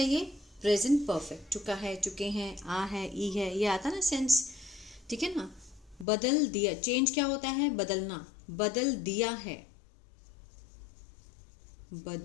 ये? Present perfect. चुका है, चुके हैं, आ है, ई है, ये आता ना सेंस, ठीक है ना। बदल दिया, चेंज क्या होता है? बदलना। बदल दिया है,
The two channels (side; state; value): right; drops out; at 6.1 s